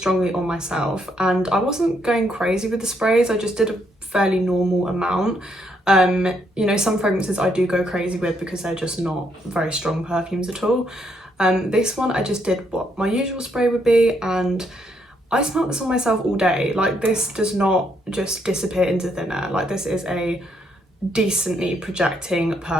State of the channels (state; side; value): normal; both; correlation 0.74